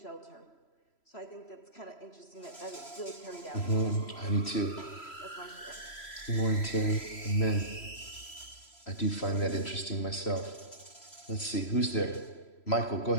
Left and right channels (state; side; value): late; right; 3.0 ms